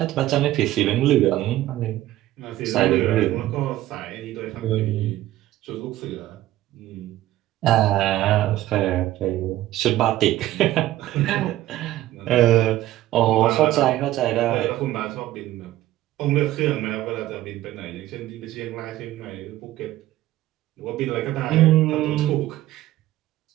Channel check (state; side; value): quieter; left; 14.9 dB